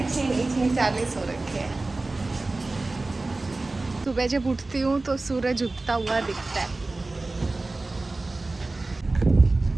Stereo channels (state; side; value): quieter; left; 3.2 dB